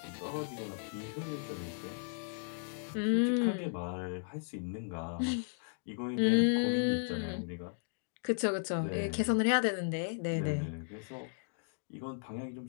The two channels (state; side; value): silent; right; digital silence